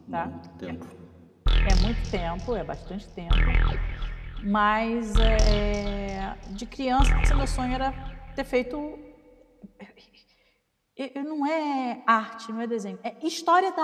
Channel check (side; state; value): both; identical; correlation 1.00